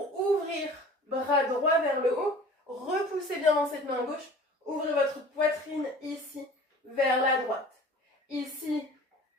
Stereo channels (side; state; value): both; normal; correlation 0.44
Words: ouvrir bras droit vers le haut. Repoussez bien dans cette main gauche. Ouvrez votre poitrine ici vers la droite. Ici,